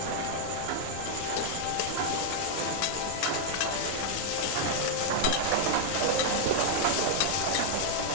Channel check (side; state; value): both; different; correlation -0.01